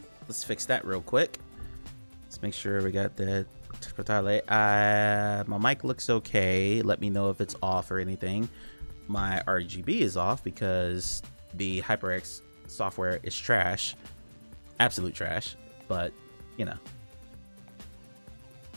Let's fix that real quick. Let's make sure we got the touch portal. My mic looks okay. Let me know if it's off or anything. My RGB is off because the HyperX software is trash. Absolute trash. But, you know.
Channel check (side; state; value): both; inverted; correlation -1.00